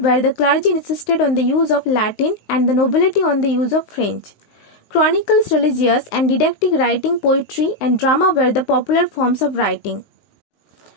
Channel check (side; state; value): right; late; 19 ms